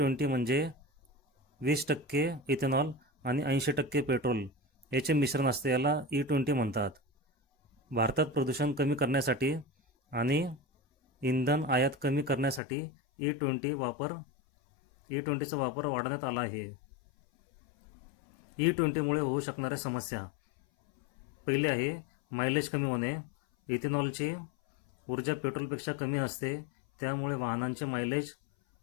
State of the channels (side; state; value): right; drops out; at 12.6 s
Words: म्हणजे 20% इथेनॉल आणि 80% पेट्रोल याचे मिश्रण असते, याला E20 म्हणतात. भारतात प्रदूषण कमी करण्यासाठी आणि इंधन आयात कमी करण्यासाठी E20चा वापर वाढवण्यात आला आहे. E20मुळे होऊ शकणाऱ्या समस्या. पहिली आहे मायलेज कमी होणे. इथेनॉलची ऊर्जा पेट्रोलपेक्षा कमी असते, त्यामुळे वाहनांचे मायलेज